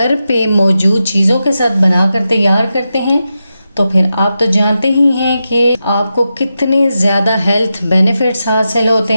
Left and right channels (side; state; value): both; inverted; correlation -0.89